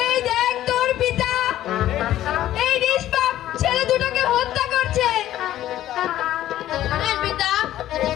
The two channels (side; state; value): right; quieter; 13.2 dB